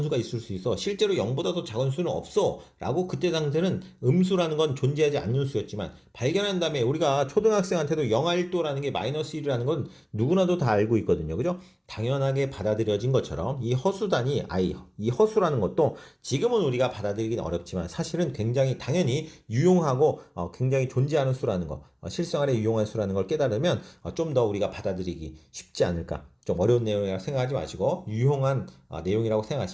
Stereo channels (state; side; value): identical; both; correlation 1.00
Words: 수가 있을 수 있어? 실제로 0보다 더 작은 수는 없어 라고 그때 당시에는 음수라는 건 존재하지 않는 수였지만 발견한 다음에 우리가 초등학생한테도 0하1도라는 게 마이너스 1이라는 건 누구나도 다 알고 있거든요. 그죠? 당연하게 받아들여진 것처럼 이 허수단위 i, 이 허수라는 것도 지금은 우리가 받아들이기는 어렵지만 사실은 굉장히 당연히 유용하고 굉장히 존재하는 수라는 거, 실생활에 유용한 수라는 걸 깨달으면 좀 더 우리가 받아들이기 쉽지 않을까. 좀 어려운 내용이라고 생각하지 마시고 유용한 내용이라고